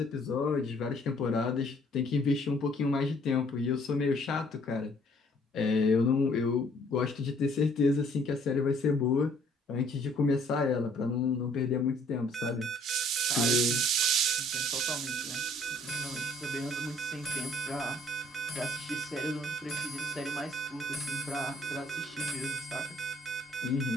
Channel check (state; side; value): normal; both; correlation 0.60